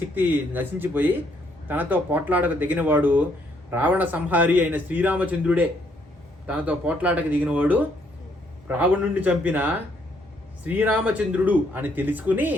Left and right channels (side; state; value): both; normal; correlation 0.70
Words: శక్తి నశించిపోయి తనతో పోట్లాడక దిగినవాడు రావణ సంహారి అయిన శ్రీరామచంద్రుడే. తనతో పోట్లాడక దిగినవాడు రావణుడిని చంపిన శ్రీరామచంద్రుడు అని తెలుసుకుని